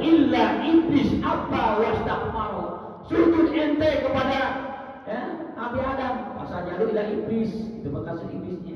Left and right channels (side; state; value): both; identical; correlation 1.00